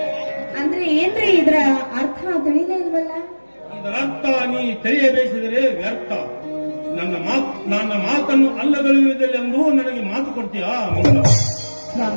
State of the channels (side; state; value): both; inverted; correlation -1.00